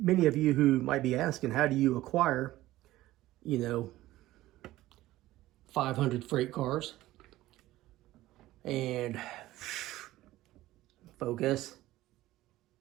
of you who might be asking, how do you acquire, you know, 500 freight cars? And focus.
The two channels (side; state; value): left; quieter; 16.2 dB